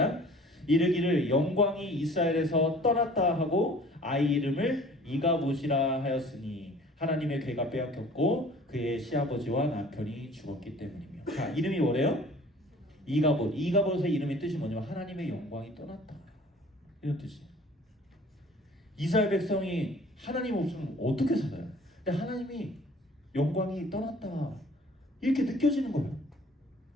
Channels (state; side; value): normal; both; correlation 0.49